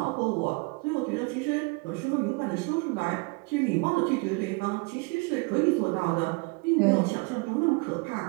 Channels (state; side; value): quieter; left; 29.8 dB